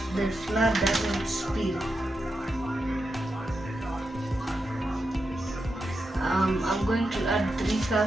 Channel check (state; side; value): normal; both; correlation 0.87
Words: the flour doesn't spill. I'm going to add 3